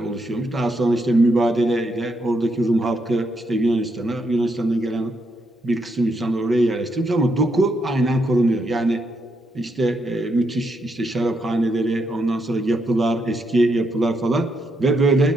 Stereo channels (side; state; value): both; normal; correlation 0.79